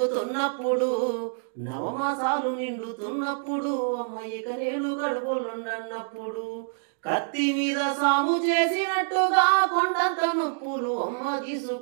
నవమాసాలు నిండుతున్నప్పుడు, అమ్మయ్యక నేను గడుపులుండన్నప్పుడు, కత్తి మీద సాము చేసినట్టుగా కొండంత నొప్పులు అమ్మ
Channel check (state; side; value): silent; left; digital silence